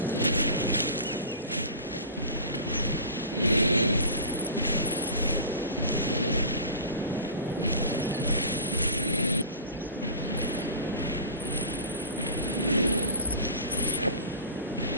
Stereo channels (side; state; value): both; inverted; correlation -0.36